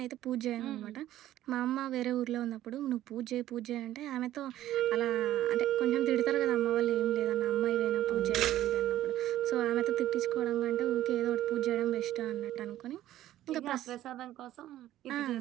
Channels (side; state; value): left; quieter; 13.5 dB